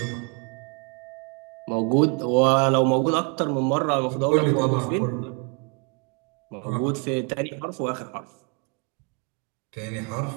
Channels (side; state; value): left; quieter; 36.2 dB